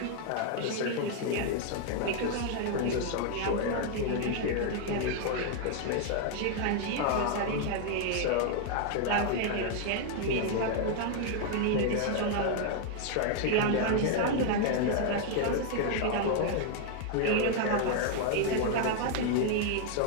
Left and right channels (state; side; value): different; both; correlation 0.00